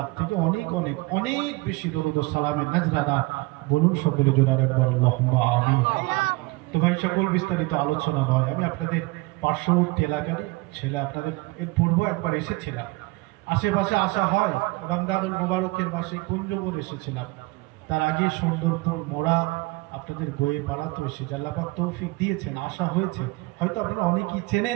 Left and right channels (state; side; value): quieter; left; 22.9 dB